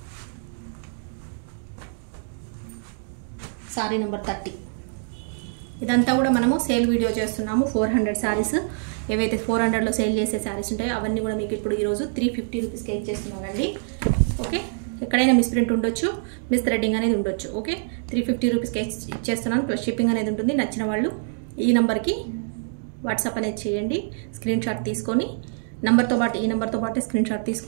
శారీ నెంబర్ 30. ఇదంతా కూడా మనము సేల్ వీడియో చేస్తున్నాము. 400 శారీస్, ఏవైతే 400లో సేల్ చేసే శారీస్ ఉంటాయో అవన్నీ కూడా మీకు ఇప్పుడు ఈరోజు 350 రూపీస్కి ఇచ్చేస్తున్నానండి. ఓకే, ఎక్కడైనా మిస్ ప్రింట్ ఉండొచ్చు, మిస్ థ్రెడ్డింగ్ అనేది ఉండొచ్చు. ఓకే, 350 రూపీస్కి ఇచ్చేస్తున్నాను. ప్లస్ షిప్పింగ్ అనేది ఉంటుంది. నచ్చిన వాళ్ళు ఈ నెంబర్కి వాట్సాప్ అనేది చేయండి. స్క్రీన్ షాట్ తీసుకొని నెంబర్తో పాటు ఈ నెంబర్తో పాటు స్క్రీన్ షాట్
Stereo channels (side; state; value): left; silent; digital silence